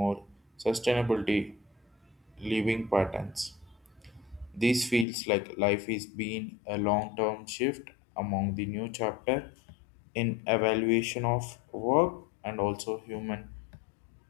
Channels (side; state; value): right; drops out; at 5.1 s